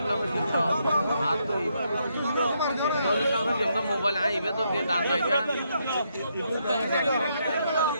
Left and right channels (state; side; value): inverted; both; correlation -0.77